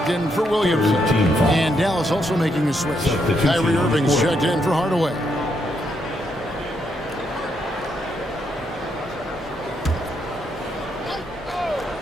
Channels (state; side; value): normal; both; correlation 0.77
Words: in for Williamson. And Dallas also making a switch. Kyrie Irving's checked in for Hardaway.